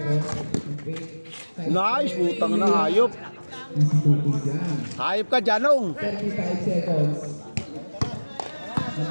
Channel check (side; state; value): both; inverted; correlation -1.00